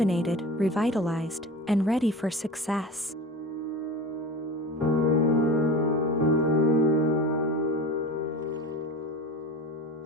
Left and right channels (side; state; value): both; normal; correlation 0.32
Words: revitalized, and ready for success.